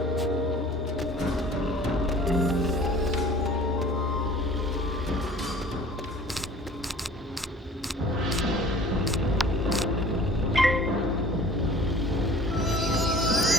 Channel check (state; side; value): normal; both; correlation 0.47